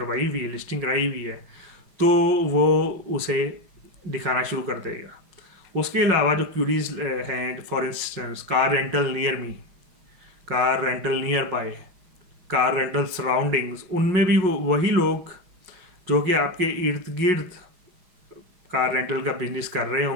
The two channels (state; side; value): late; left; 5.5 ms